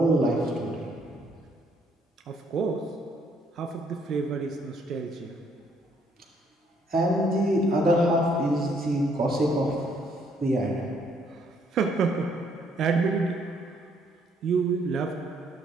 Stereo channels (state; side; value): normal; both; correlation 0.68